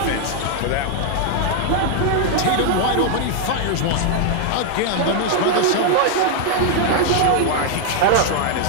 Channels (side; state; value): both; different; correlation 0.00